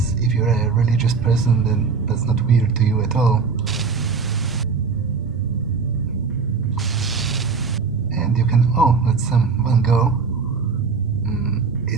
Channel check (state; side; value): quieter; left; 5.0 dB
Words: if you're a religious person, then that's not weird to you at all. And you can... oh, that's some Van Gogh.